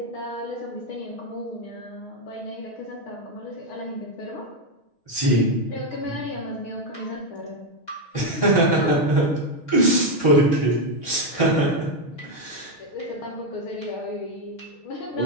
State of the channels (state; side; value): late; right; 6.4 ms